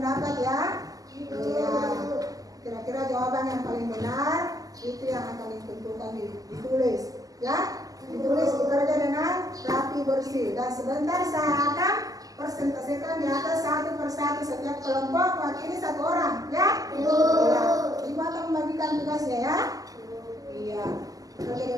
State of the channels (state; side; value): late; left; 0.17 ms